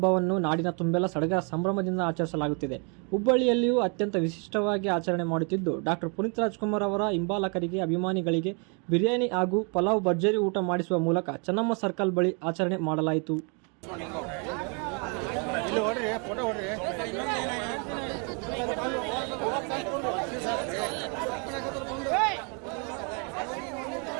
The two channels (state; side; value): quieter; left; 35.9 dB